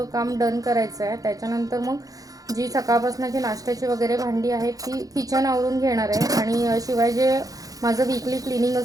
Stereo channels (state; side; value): late; left; 0.17 ms